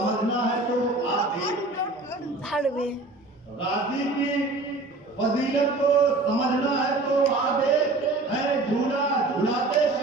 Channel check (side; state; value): left; quieter; 3.2 dB